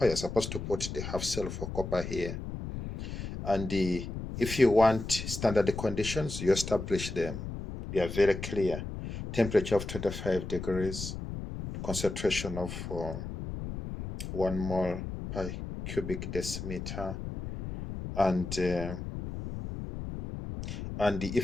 you're supposed to put the half cell for copper here. And if you want standard conditions, you establish them. They are very clear. Temperature of 25 degrees, concentration of 1 mole per cubic decimeter, and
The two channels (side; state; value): left; noise; rumble, 7 dB below the sound